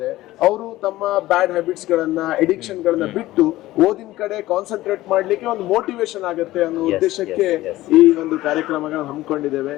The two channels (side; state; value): right; quieter; 16.6 dB